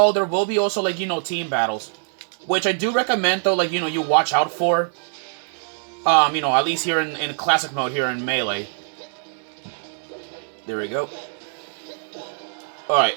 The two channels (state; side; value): silent; left; 60 dB below the other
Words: there will be also, like, team battles. Which I do recommend, though, like, you watch out for. At least here in Classic mode here in Melee. There we go. Alright.